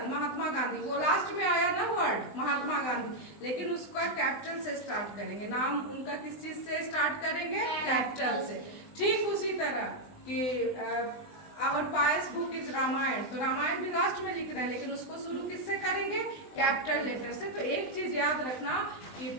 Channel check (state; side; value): late; right; 20 ms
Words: Mahatma Gandhi, वो लास्ट में आया ना वर्ड महात्मा गांधी, लेकिन उसका कैपिटल से स्टार्ट करेंगे। नाम उनका किस चीज से स्टार्ट करेंगे? कैपिटल से। ठीक उसी तरह कि our pious book is Ramayan, तो रामायण भी लास्ट में लिख रहे हैं, लेकिन उसको शुरू किससे करेंगे? कैपिटल लेटर से। तो एक चीज याद रखना कि